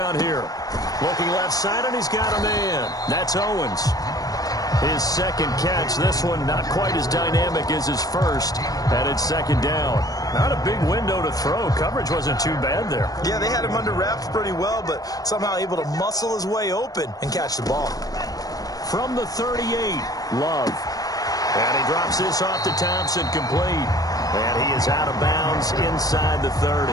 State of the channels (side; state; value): right; late; 0.18 ms